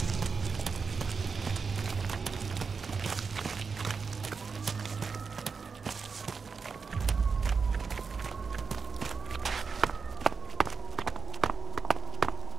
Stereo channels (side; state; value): left; quieter; 5.3 dB